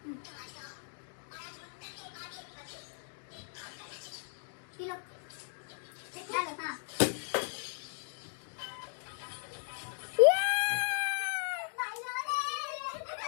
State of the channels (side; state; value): right; silent; digital silence